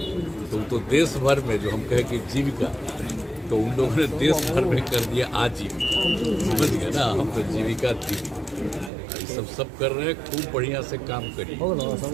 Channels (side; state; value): left; drops out; at 8.9 s